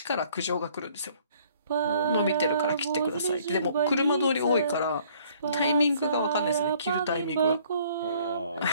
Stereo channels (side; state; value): both; inverted; correlation -0.59